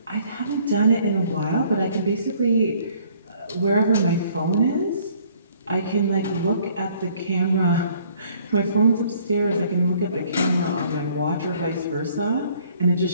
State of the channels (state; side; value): inverted; both; correlation -0.60